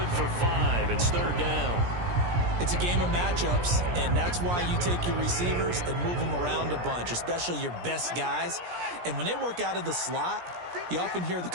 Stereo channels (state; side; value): late; left; 17 ms